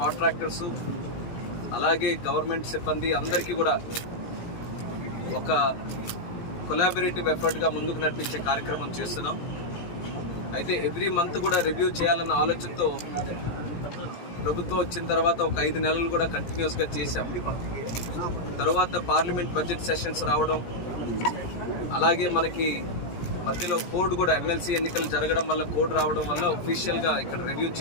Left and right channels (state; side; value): late; right; 17 ms